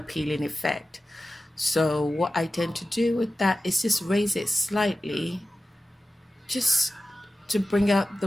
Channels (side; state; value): both; normal; correlation 0.94